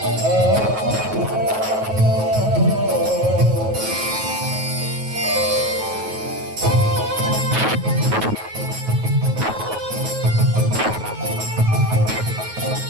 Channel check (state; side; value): late; left; 9.3 ms